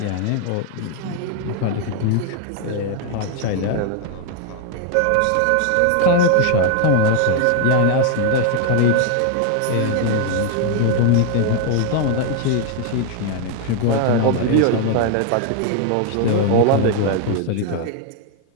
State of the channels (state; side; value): different; both; correlation 0.00